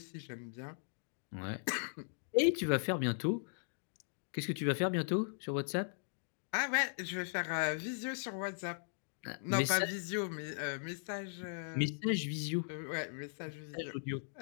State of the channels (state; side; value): silent; right; digital silence